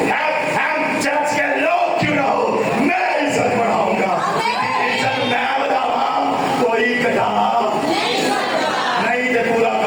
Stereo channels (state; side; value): identical; both; correlation 1.00